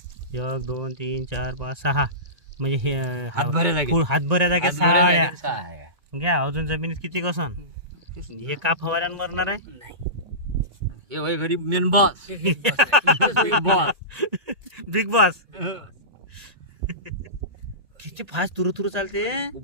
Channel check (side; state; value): left; late; 1.9 ms